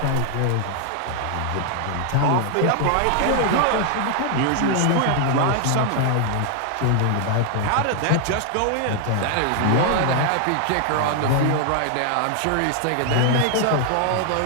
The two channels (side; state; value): both; different; correlation 0.00